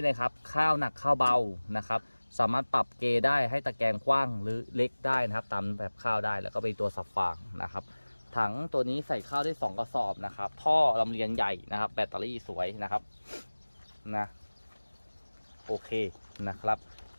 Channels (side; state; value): both; inverted; correlation -1.00